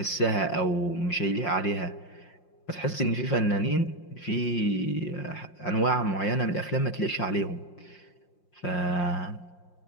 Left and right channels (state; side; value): late; right; 5.6 ms